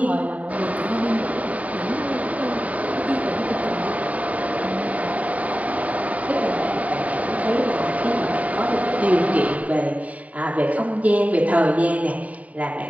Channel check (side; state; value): left; late; 0.069 ms